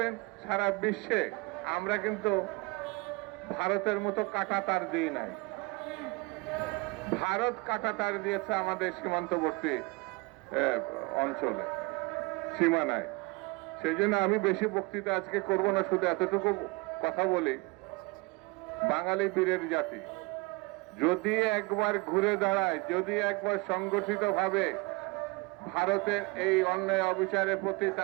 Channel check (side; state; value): left; quieter; 25.6 dB